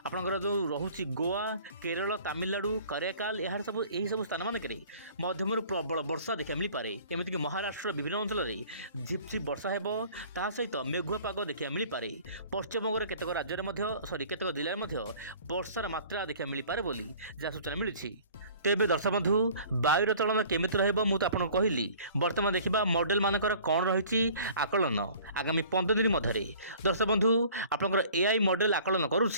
आपंकर जो रोचे गोवा, केरल, तमिलनाडु, कराकाल यार सब यही सब स्थान मानक मध्यम प्रबल वर्षा देखा मिल पारे। एमतीक महाराष्ट्र विभिन्न अंचल में झिपझिप वर्षा हो ता सहित मेघुआ पाग देखा मिल पारे। पश्चिमबंगर केतक राज्य में केतक जिले में वर्षार मात्रा देखा मिल पारे बोली जहाँ सूचना मिली। तेबे दर्शक बंधु वायुर चलन केमिति रहइबो मु तो आपन कहली। वर्तमान देखा मॉडल मानकर कौन रही आकलन आगामी 15 दिन मध्य दर्शक बंधु आपनकर एआई मॉडल आकलन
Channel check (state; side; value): inverted; both; correlation -0.49